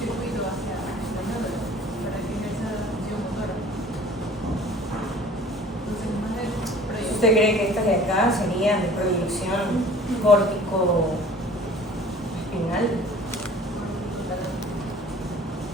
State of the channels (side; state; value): both; normal; correlation 0.48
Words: hacia la médula para que ejerza la función motora. Entonces, más de proyección. ¿Usted cree que estas de acá serían de proyección córtico espinal?